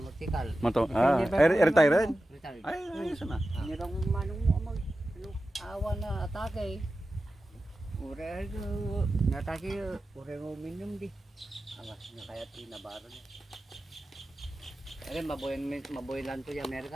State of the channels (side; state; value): both; normal; correlation 0.93